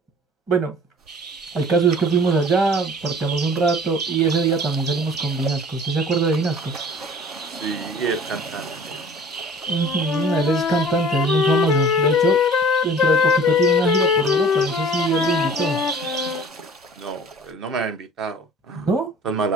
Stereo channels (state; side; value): normal; both; correlation 0.47